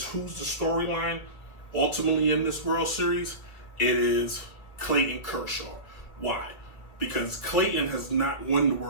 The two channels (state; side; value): late; right; 2.4 ms